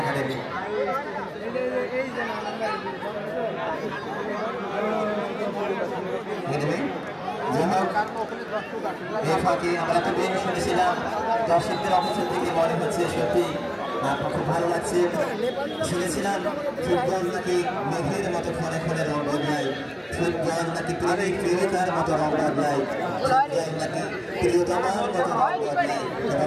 এই ফাঁকে আমরা তো বেশ শুনেছিলাম, দর্শকদের অবস্থা থেকে মনে হচ্ছে সত্যি খুব ভালো লাগছে। শুনেছিলাম ফুটবল নাকি মেঘের মতো ক্ষণে ক্ষণে রং বদলায়, ফুটবল নাকি প্রেমিক প্রেমিকার মতো রং বদলায়, ফুটবল নাকি প্রিয়তমার মতো রং বদলায় এবং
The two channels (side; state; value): both; identical; correlation 1.00